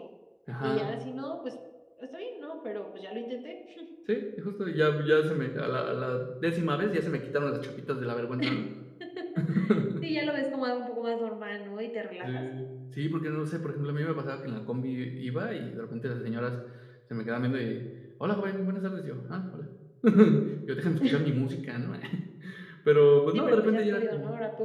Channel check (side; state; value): both; identical; correlation 1.00